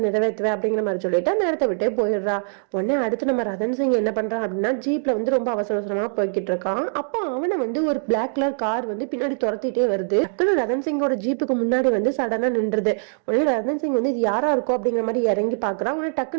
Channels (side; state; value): left; silent; digital silence